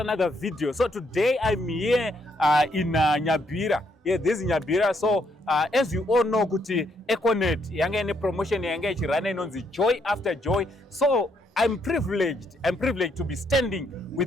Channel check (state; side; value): normal; both; correlation 0.73